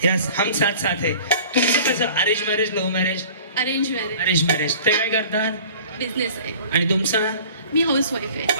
यस, हम साथ साथ है. तुमचं कसं? Arrange marriage, love marriage? Arrange marriage. Arrange marriage. ते काय करतात? बिझनेस आहे. आणि तुमचा? मी हाऊस वाईफ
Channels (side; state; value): both; inverted; correlation -0.45